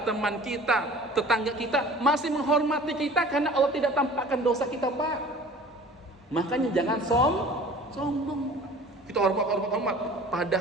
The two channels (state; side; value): normal; both; correlation 0.45